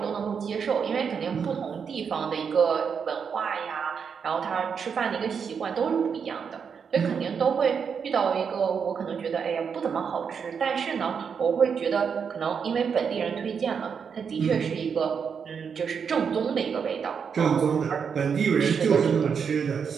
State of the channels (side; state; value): left; quieter; 6.6 dB